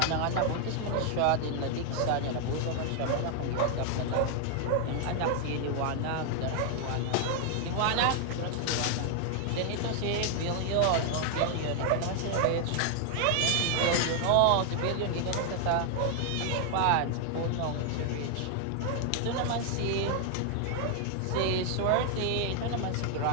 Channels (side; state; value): both; different; correlation 0.00